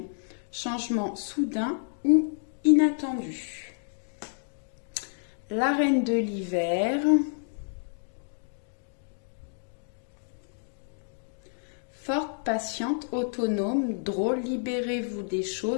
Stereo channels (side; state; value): right; silent; digital silence